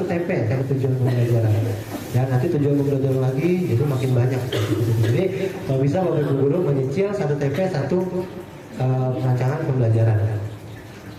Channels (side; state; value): both; identical; correlation 1.00